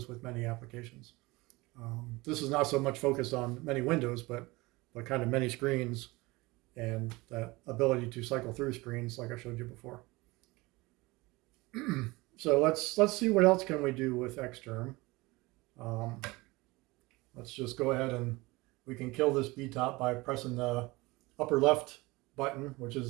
with many applications. This is not so much focused on many windows, but kind of many screens and that ability to cycle through screens like I showed you before. So let's see what else can we do with Xterm. Let's just go ahead and we can kill this BTOP by pressing the upper left button, which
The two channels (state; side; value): quieter; left; 22.4 dB